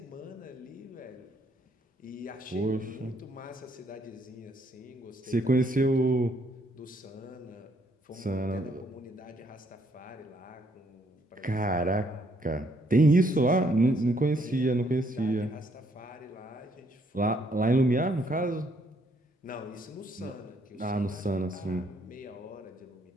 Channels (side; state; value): both; normal; correlation 0.69